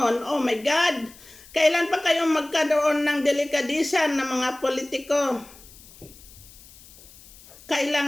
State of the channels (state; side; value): noise; left; hiss, 22 dB below the sound